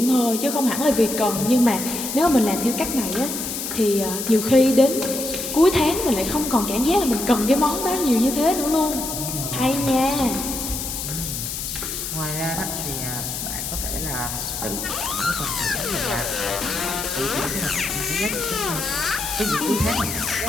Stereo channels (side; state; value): left; noise; hiss, 5 dB below the sound